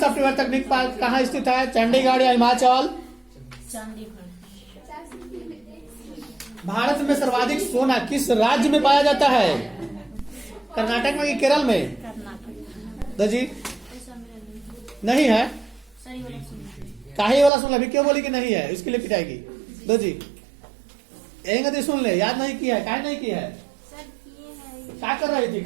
तकनीक पार्क कहाँ स्थित है? चंडीगढ़ या हिमाचल? भारत में सर्वाधिक सोना किस राज्य में पाया जाता है? कर्नाटक में कि केरल में? दो जी नहीं है। काहे वाला सुन अभी क्यों बोली कि नहीं है? इसके लिए पिटाएगी। दो जी एक सुन ले, याद नहीं किया है? काहे नहीं किया है? क्या कर रही थी?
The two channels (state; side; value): drops out; left; at 17.5 s